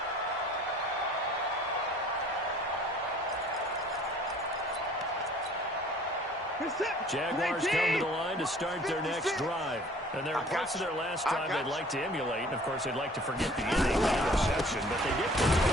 Jaguars come to the line to start their next drive. And there are parts of their last drive they'd like to emulate. And, of course, they'd like to forget the inning interception. But they did put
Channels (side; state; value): both; normal; correlation 0.52